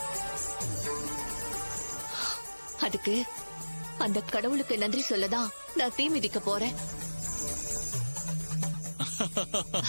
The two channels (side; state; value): both; inverted; correlation -1.00